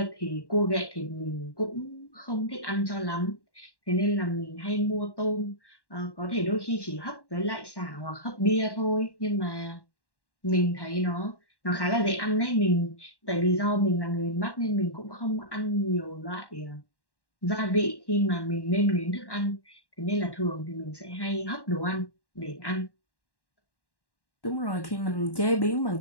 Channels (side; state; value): right; late; 1.1 ms